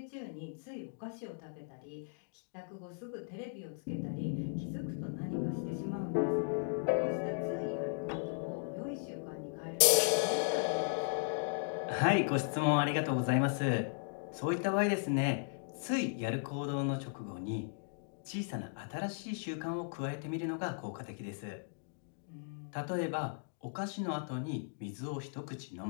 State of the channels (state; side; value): silent; right; digital silence